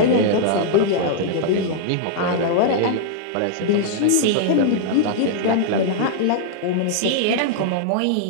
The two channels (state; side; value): different; both; correlation -0.01